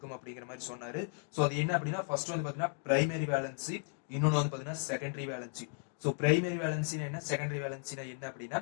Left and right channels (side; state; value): right; silent; 54 dB below the other